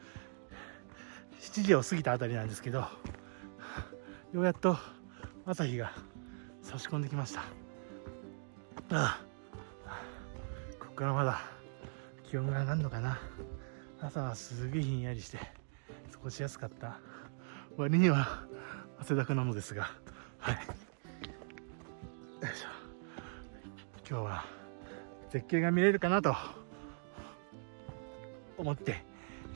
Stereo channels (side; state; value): left; silent; digital silence